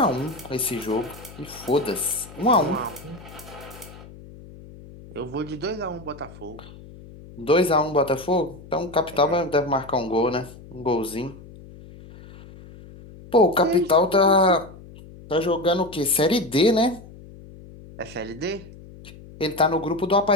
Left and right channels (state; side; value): noise; left; hum, 18 dB below the sound